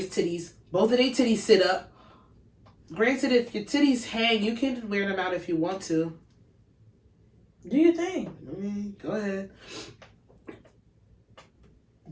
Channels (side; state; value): both; identical; correlation 1.00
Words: titties. Both of their titties sit up. Granted, if your titties hang, you can wear them out if you want to. Do you think? Go ahead.